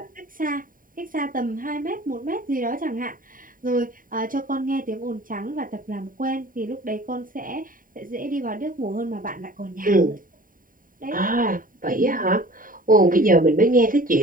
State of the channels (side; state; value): left; late; 0.40 ms